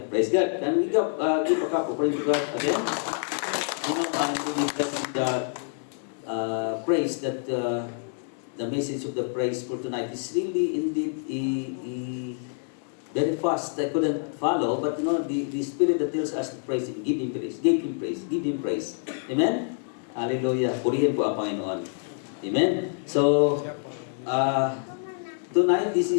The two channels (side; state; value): right; silent; digital silence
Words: Praise God. Can we give a cup offering to God again? Amen. I'm really blessed with the praise that the message of the praise for tonight is really indeed very fast. I couldn't follow, but you know, the Spirit that tells us to praise Him, give Him praise, give Him praise, give Him praise. Amen? Hallelujah. Purihin po ang Panginoon. Amen? So, tonight, this